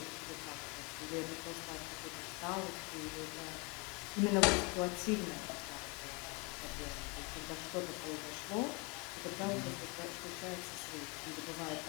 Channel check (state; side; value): quieter; right; 30.0 dB